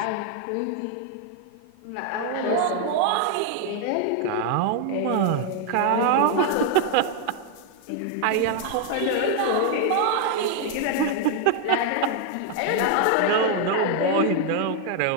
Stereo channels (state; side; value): different; both; correlation 0.00